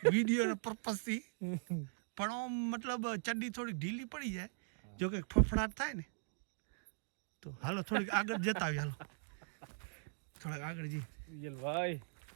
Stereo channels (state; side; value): silent; left; digital silence